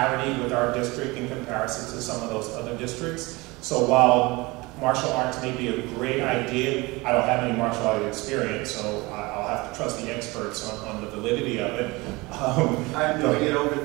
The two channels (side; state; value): left; quieter; 23.3 dB